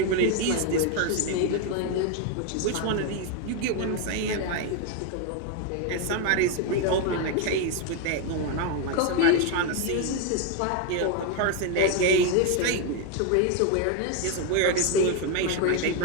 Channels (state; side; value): different; both; correlation 0.01